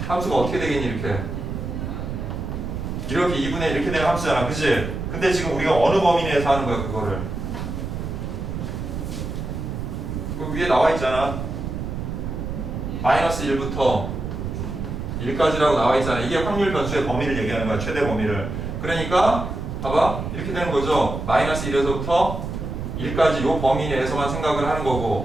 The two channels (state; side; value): noise; right; rumble, 5 dB below the sound